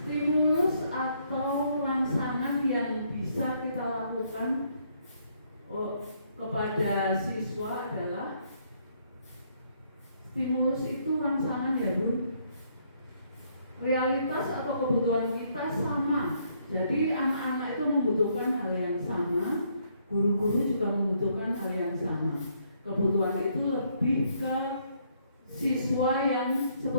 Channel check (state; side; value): inverted; both; correlation -0.70